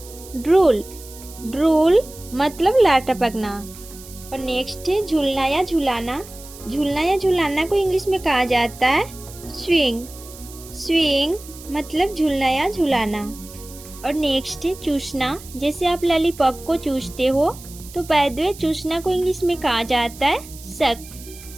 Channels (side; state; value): right; noise; hiss, 18 dB below the sound